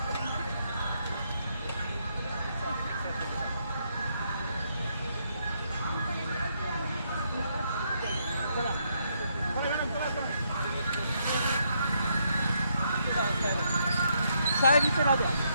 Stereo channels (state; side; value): inverted; both; correlation -0.76